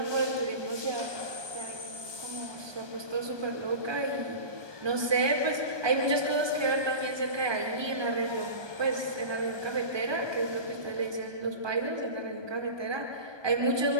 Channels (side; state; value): left; late; 1.2 ms